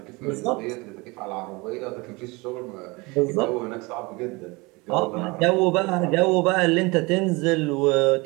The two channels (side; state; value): left; quieter; 25.2 dB